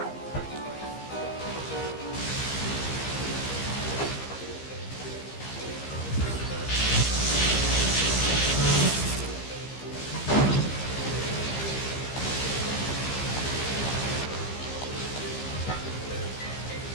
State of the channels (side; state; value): right; late; 15 ms